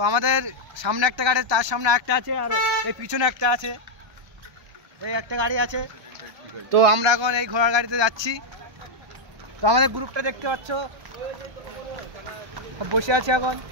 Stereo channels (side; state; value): left; late; 1.3 ms